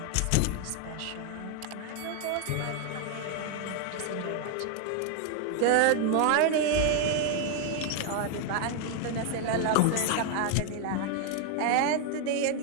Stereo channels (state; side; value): different; both; correlation 0.01